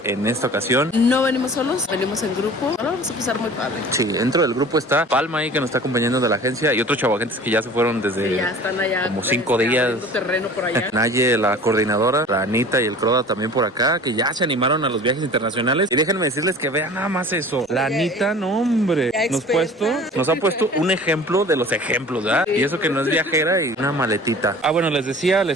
en esta ocasión No venimos solos, venimos en grupo. Ahora vamos a pasar muy padre. sí, dentro del grupo está Palma ahí que nos está acompañando de la agencia y otros chavagentes que ya se fueron desde Ya están allá. como 5 días. Abriendo terreno por allá. Naye, la coordinadora, la Anita y el Croda también por acá, que ya se animaron a los viajes internacionales. Y déjenme decirles que vean nada más eso. La Anita, no hombre, nos ha puesto un ejemplo de los ejemplos, ¿verdad? Y eso que no es viajera y una maletita. Ah, bueno, les decía,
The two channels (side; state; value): both; normal; correlation 0.43